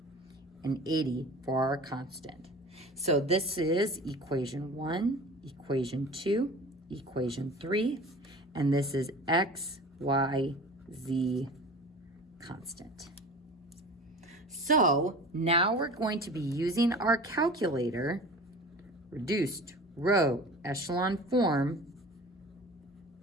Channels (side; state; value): both; normal; correlation 0.39